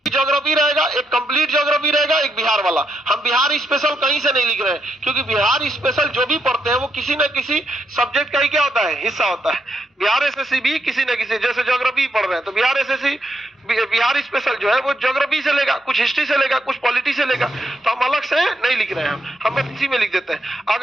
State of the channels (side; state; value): both; normal; correlation 0.79